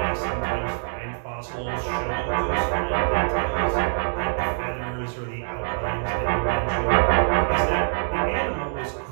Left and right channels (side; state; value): left; silent; digital silence